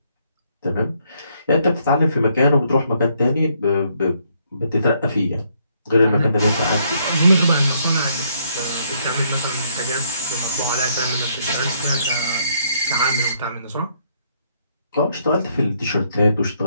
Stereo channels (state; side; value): inverted; both; correlation -0.71